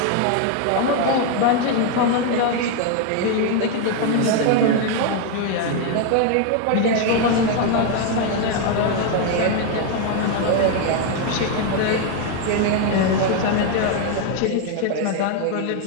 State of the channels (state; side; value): different; both; correlation 0.01